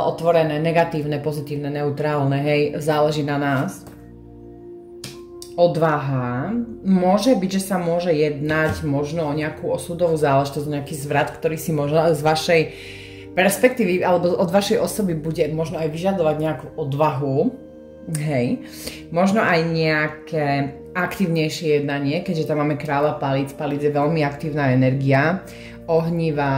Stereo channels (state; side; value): identical; both; correlation 1.00